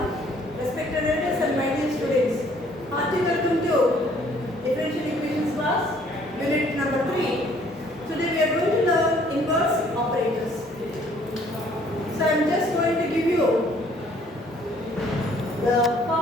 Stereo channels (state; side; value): normal; both; correlation 0.60